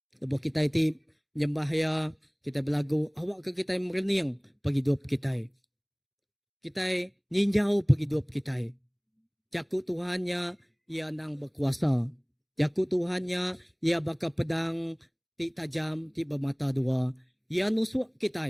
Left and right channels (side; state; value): both; identical; correlation 1.00